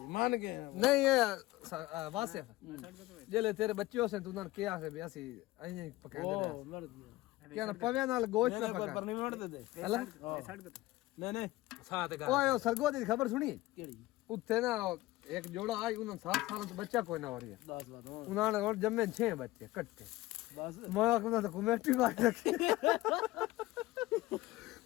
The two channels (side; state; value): right; quieter; 18.4 dB